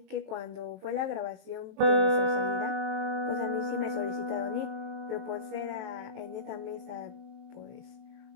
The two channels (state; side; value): late; left; 23 ms